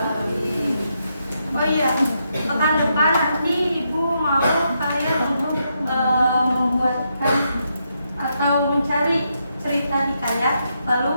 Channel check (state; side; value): inverted; both; correlation -0.81